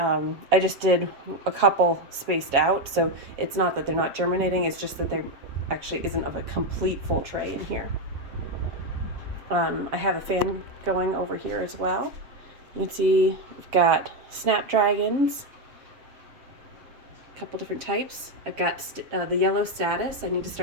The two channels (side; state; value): left; late; 7.2 ms